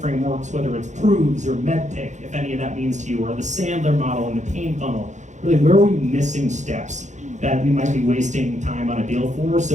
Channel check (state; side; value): late; left; 0.35 ms